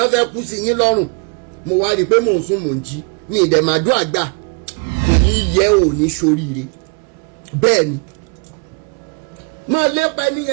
fẹ́ kú sí yín lọ́rùn. Mo wá rí i pé mò ń sùn mò ń jí ní ìdẹ̀màdúrà gbà kò ní yẹ ò ní ṣoríire bẹ́ẹ̀ ni. Máa lépa ẹni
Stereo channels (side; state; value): left; quieter; 34.0 dB